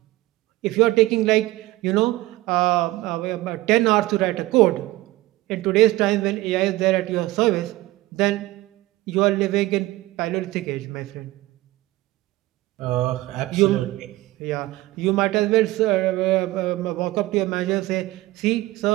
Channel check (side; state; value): left; quieter; 18.1 dB